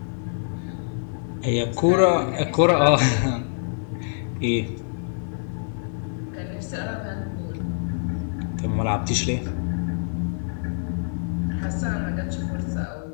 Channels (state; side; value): silent; right; digital silence